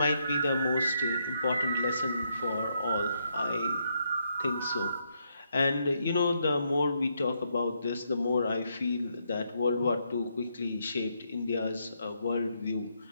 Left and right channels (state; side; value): inverted; both; correlation -0.77